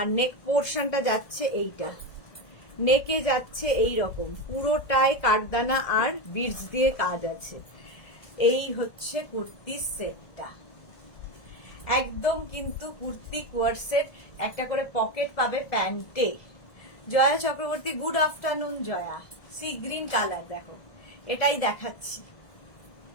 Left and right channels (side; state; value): right; late; 1.7 ms